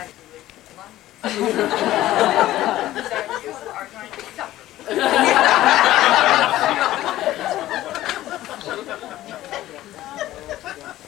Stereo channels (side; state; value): right; quieter; 14.8 dB